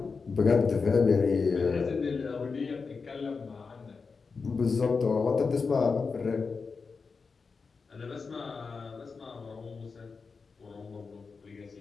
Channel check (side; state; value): right; quieter; 4.8 dB